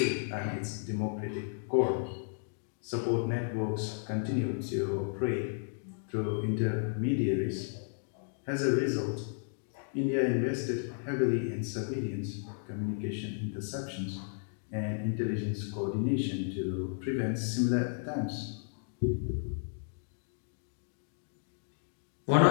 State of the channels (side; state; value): right; silent; digital silence